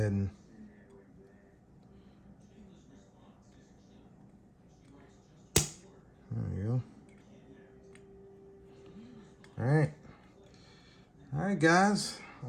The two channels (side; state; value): both; identical; correlation 1.00